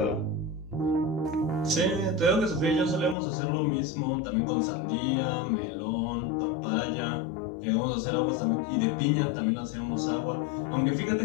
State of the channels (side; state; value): right; drops out; at 3.2 s